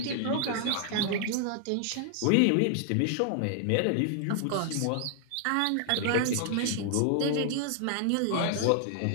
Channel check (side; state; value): both; different; correlation 0.00